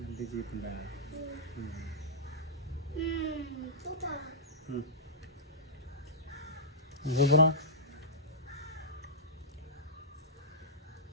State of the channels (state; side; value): normal; both; correlation -0.14